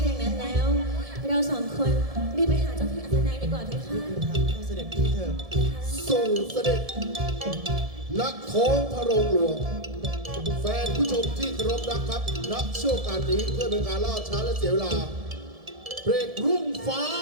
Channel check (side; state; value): left; late; 1.7 ms